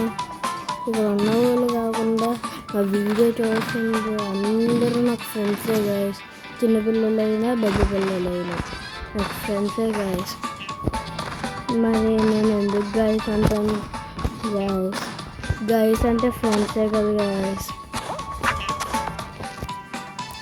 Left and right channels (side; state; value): both; identical; correlation 1.00